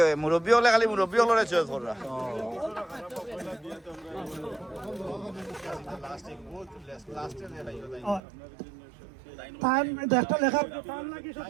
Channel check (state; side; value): drops out; left; at 8.2 s